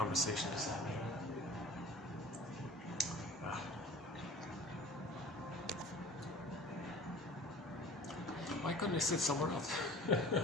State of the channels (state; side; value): normal; both; correlation 0.43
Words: to say. Why couldn't I sit somewhere else?